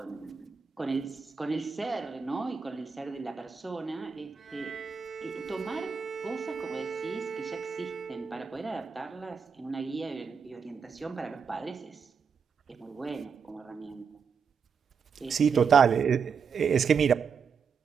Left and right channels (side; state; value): left; quieter; 6.1 dB